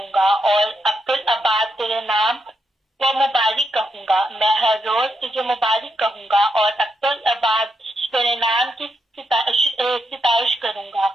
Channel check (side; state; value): both; normal; correlation 0.81